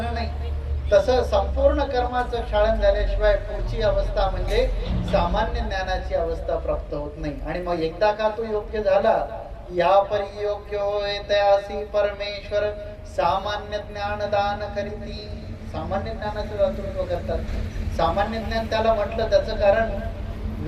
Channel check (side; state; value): both; identical; correlation 1.00